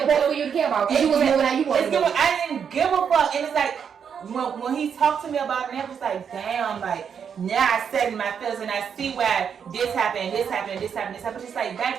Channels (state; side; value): quieter; left; 7.3 dB